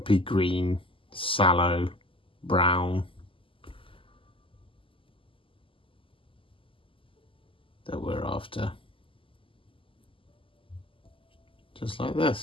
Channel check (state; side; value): late; right; 0.25 ms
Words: green, sallow brown that we're after. Just like